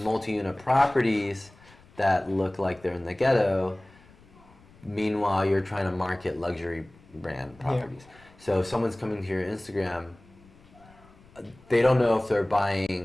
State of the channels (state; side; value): noise; left; rumble, 26 dB below the sound